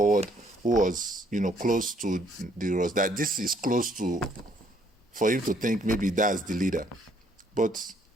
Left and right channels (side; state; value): both; normal; correlation 0.66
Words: who was close to the Ross, that this is close to, for him to think maybe that's the leader, but